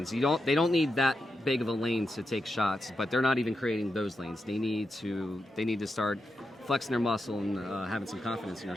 They don't need that big of a lane to take shots, but they're not even creating those lanes. They need to start flexing their muscle and having some confidence in their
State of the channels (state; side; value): normal; both; correlation 0.87